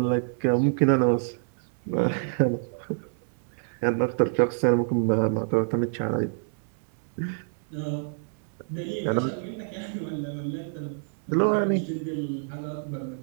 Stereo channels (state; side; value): silent; left; 59 dB below the other